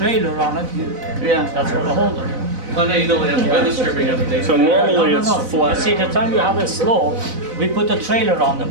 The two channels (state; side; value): late; left; 4.0 ms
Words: on it, Yeah. that's for the holder. I know you don't have weather stripping underneath. So normally it's You flat. see, the time you have a slope, we put a trailer on the